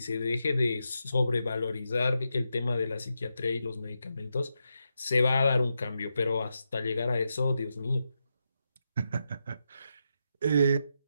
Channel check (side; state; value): both; inverted; correlation -0.86